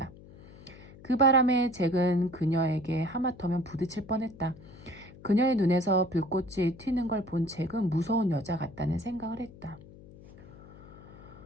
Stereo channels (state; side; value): noise; left; hum, 19 dB below the sound